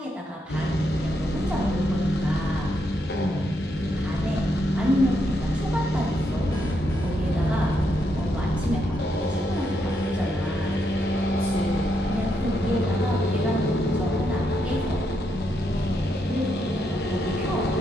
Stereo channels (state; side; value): normal; both; correlation 0.79